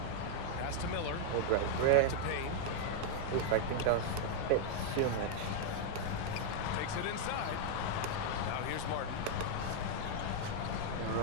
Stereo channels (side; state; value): both; different; correlation 0.00